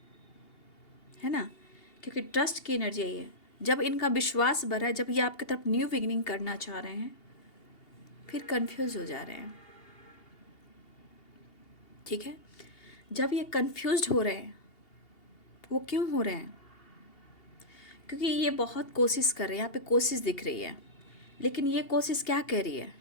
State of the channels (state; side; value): late; right; 2.8 ms